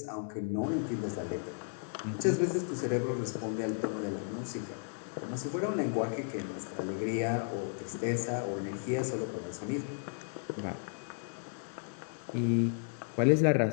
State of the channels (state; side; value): silent; right; digital silence